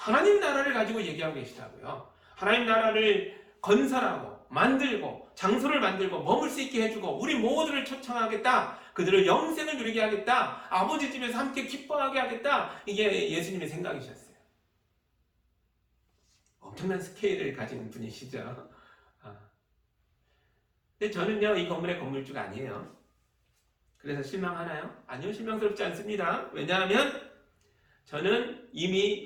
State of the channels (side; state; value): both; identical; correlation 1.00